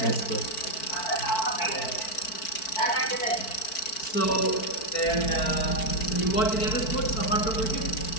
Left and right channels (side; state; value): right; late; 4.5 ms